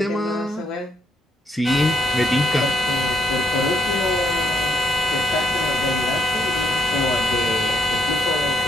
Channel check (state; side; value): normal; both; correlation 0.74